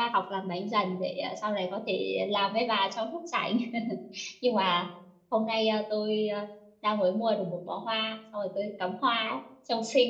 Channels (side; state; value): both; identical; correlation 1.00